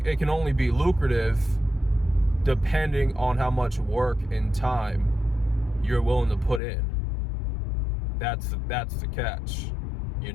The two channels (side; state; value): right; drops out; at 6.6 s